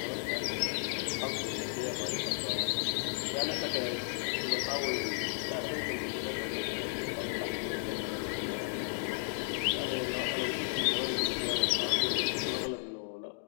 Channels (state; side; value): silent; right; digital silence